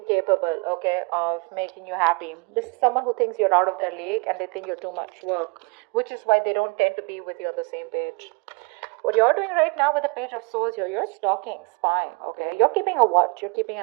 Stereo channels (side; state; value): left; quieter; 31.7 dB